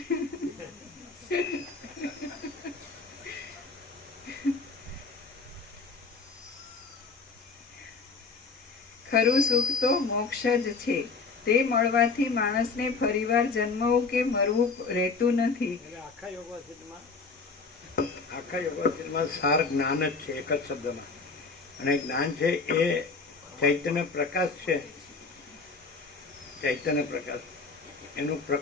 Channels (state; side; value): quieter; right; 4.4 dB